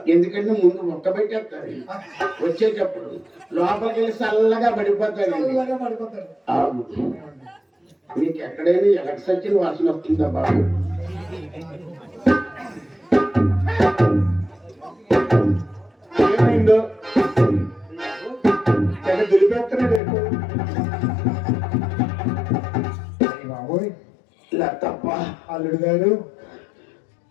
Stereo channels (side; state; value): right; drops out; at 20.0 s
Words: ముందు మొక్క పెట్టేస్తారు, వచ్చేటప్పుడు లోపలికి వెళ్ళి చల్లగా పడిపోతాడు. మీకు ఎక్కడైనా ఎలక్ట్రిసిటీ వాసన వస్తుందా బాబు? ఏమైందో దులిపేస్తున్నాడు బాబోయ్. ఇలా తప్ప అల్లుడు గారు,